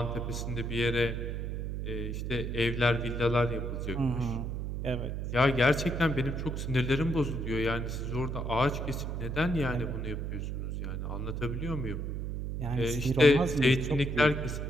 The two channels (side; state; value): right; noise; hum, 3 dB below the sound